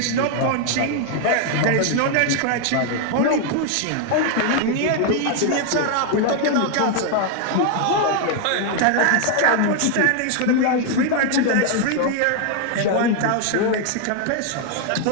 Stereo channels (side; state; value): both; different; correlation 0.00